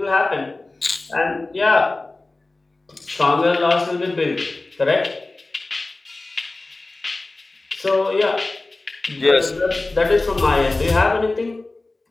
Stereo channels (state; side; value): quieter; right; 3.1 dB